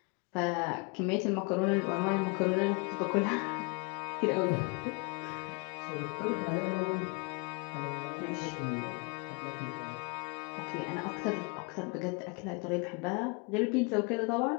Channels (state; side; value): quieter; right; 32.0 dB